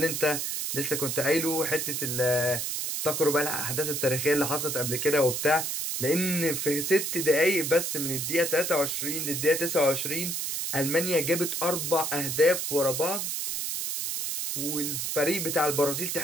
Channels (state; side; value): noise; right; hiss, 2 dB below the sound